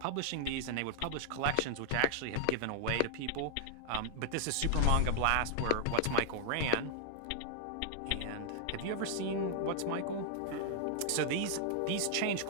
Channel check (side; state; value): both; different; correlation -0.01